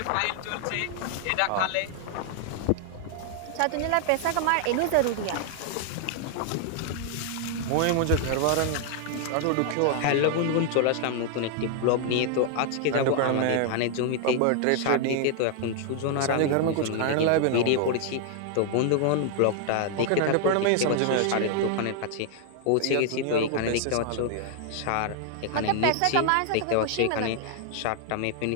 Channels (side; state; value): both; different; correlation 0.00